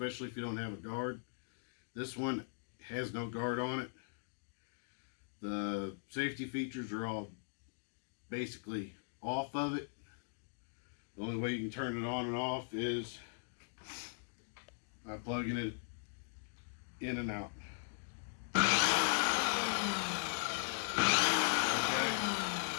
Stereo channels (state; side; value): silent; right; digital silence